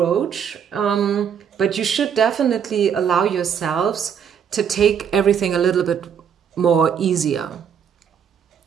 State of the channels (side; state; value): left; quieter; 7.8 dB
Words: but you should definitely allow yourselves to take everything a little bit more easier,